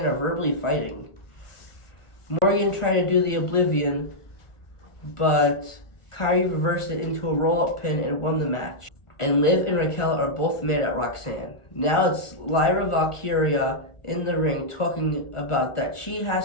are verbally fighting. Morgan tried to do the Oblivion, but Kairi reversed it into a roll-up pin and won the match. And Liv and Raquel are both mad at Roxanne. Now it's Lyra Valkyria in the ring talking about that she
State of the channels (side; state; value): right; late; 1.4 ms